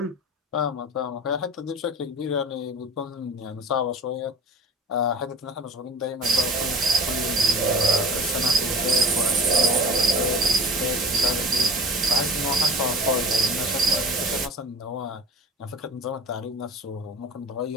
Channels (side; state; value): both; normal; correlation 0.36